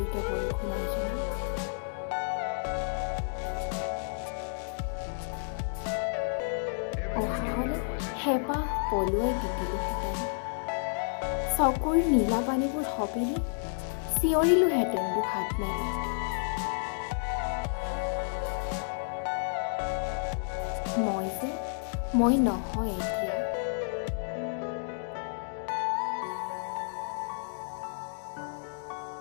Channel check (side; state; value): right; silent; digital silence